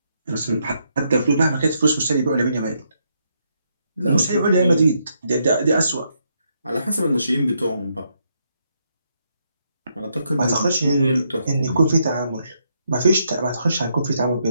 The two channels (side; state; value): both; inverted; correlation -0.77